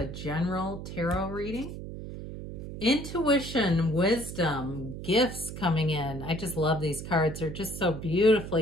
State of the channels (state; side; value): noise; right; hum, 9 dB below the sound